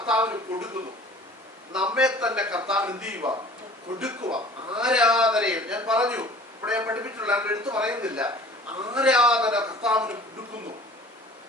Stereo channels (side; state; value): both; normal; correlation 0.47